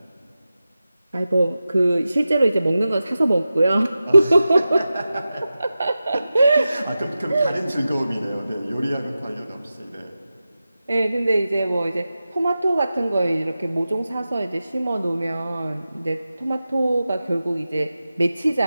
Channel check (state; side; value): inverted; both; correlation -0.93